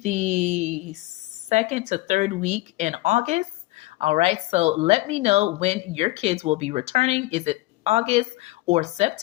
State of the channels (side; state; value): right; quieter; 19.5 dB